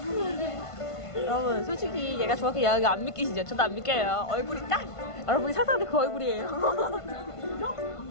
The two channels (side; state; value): right; late; 1.5 ms